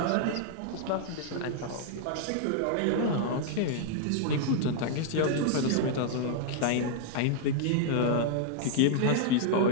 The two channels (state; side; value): different; both; correlation -0.01